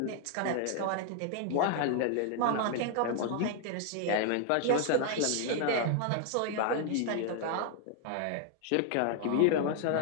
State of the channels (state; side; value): different; both; correlation 0.00